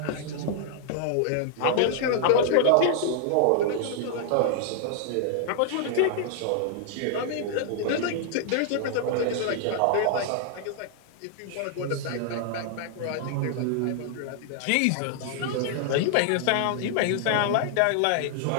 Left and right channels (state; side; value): different; both; correlation -0.01